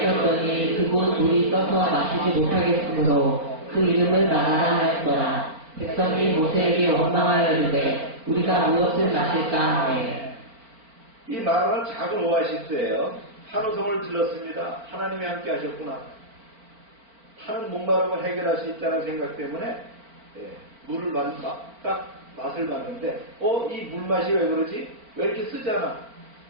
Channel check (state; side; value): late; left; 4.5 ms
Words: 그곳 물이 떠서 마시지 못하겠으므로 그 이름을 마라라 하였더라. 백성이 모세에게 원망하여 이르되 우리가 무엇을 마실까 하매. 이 마라는 작은 오아시스예요. 한호성을 질렀습니다. 하나님이 함께 하셨구나. 타는 목마름을 해결할 수 있다는 생각 때문에 물을 딱 맛을 봤는데 이 물맛이 왜 그러지? 왜 이렇게 쓰잖아?